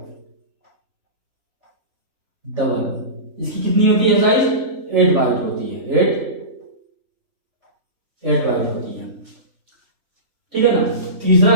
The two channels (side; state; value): left; late; 3.5 ms